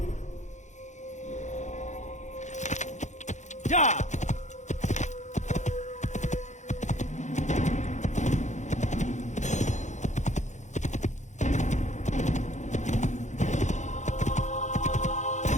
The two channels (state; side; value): late; right; 0.35 ms